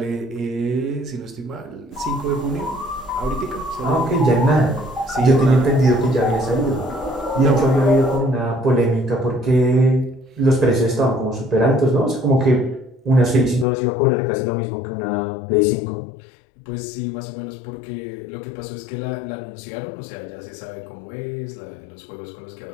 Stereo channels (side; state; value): right; drops out; at 13.7 s